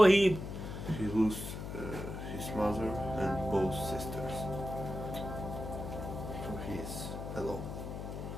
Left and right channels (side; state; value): left; noise; hum, 7 dB below the sound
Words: He lost his mother and both sisters. So he is alone.